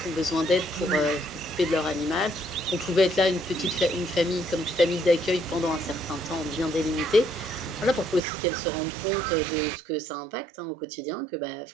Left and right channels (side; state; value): left; drops out; at 8.2 s